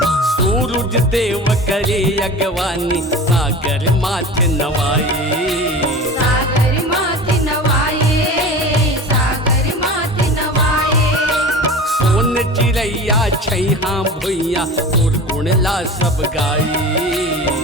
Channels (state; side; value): normal; both; correlation 0.35